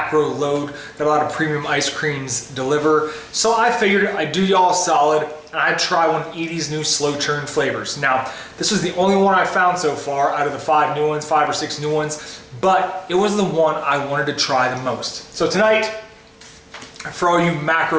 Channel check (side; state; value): both; identical; correlation 1.00